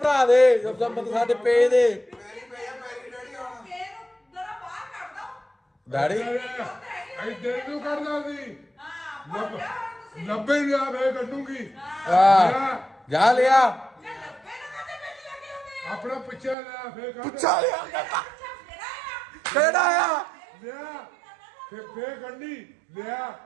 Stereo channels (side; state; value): left; drops out; at 16.6 s